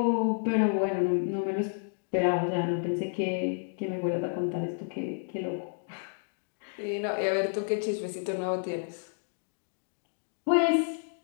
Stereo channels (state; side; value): silent; right; digital silence